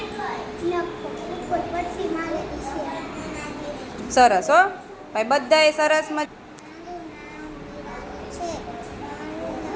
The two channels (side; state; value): both; identical; correlation 1.00